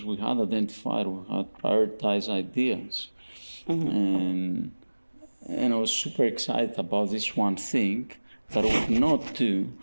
we had identified, we had prioritized ideas. And I was super excited about this one thing that I would not do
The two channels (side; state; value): both; inverted; correlation -1.00